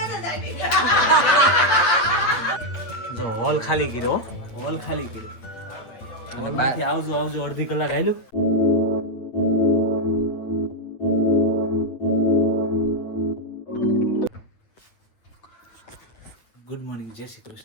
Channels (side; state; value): right; late; 8.8 ms